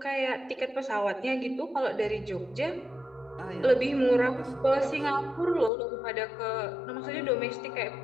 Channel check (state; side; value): drops out; right; at 5.7 s